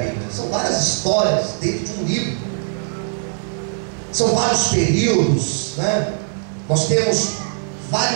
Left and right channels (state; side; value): silent; left; digital silence